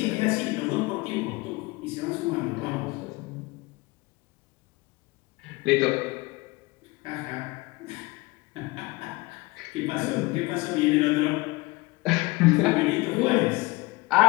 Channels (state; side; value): quieter; right; 23.0 dB